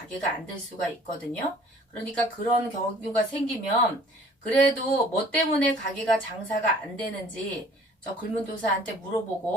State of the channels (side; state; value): both; normal; correlation 0.52